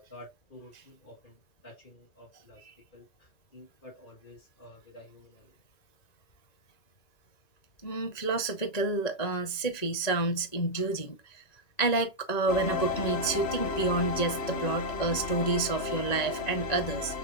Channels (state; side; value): late; right; 1.9 ms